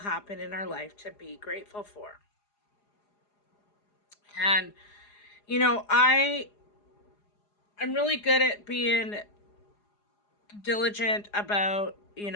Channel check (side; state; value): right; late; 4.9 ms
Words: in our life to be grateful for. And I'm really good at being diligent about,